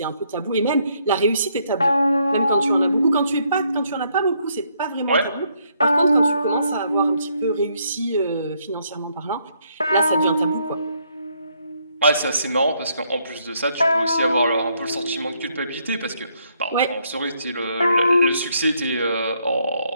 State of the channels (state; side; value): inverted; both; correlation -0.72